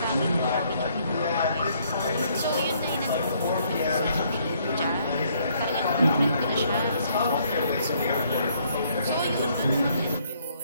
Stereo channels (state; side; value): inverted; both; correlation -0.67